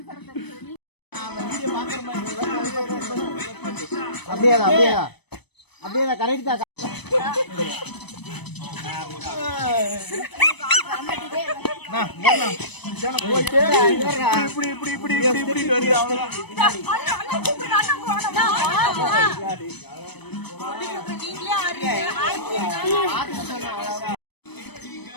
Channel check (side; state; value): right; late; 0.99 ms